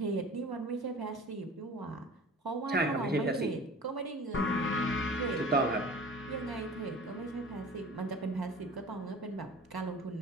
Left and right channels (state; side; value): normal; both; correlation 0.41